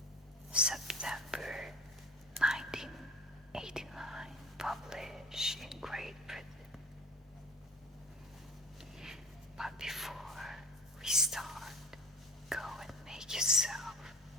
September 1989, published in Great Britain. But before we start, go and make yourself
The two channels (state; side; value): normal; both; correlation 0.40